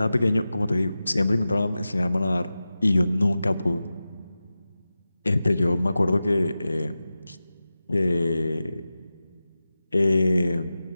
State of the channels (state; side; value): inverted; both; correlation -0.94